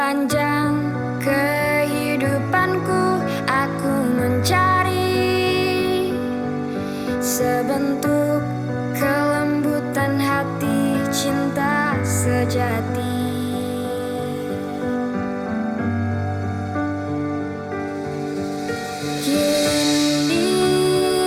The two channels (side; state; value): both; identical; correlation 1.00